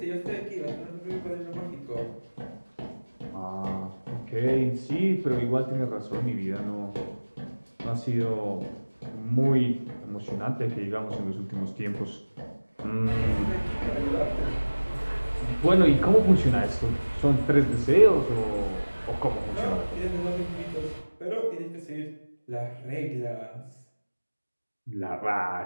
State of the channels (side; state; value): both; inverted; correlation -1.00